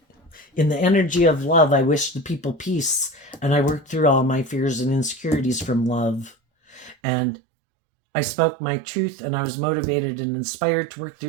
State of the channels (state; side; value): drops out; left; at 7.0 s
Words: in the energy of love, I wish the people peace, and I worked through all my fears and insecurities from love. And I spoke my truth, and I was motivated and inspired to work